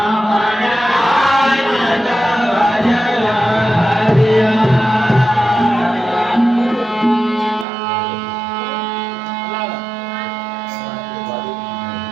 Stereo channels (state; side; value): drops out; left; at 7.7 s